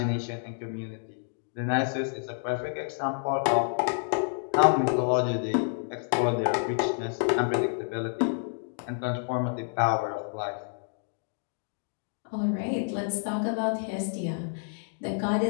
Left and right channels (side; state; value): right; silent; digital silence